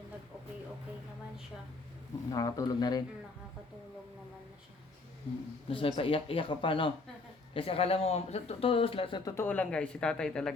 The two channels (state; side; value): quieter; right; 3.5 dB